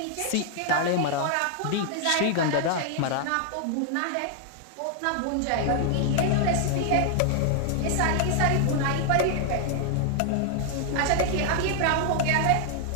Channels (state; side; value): different; both; correlation 0.00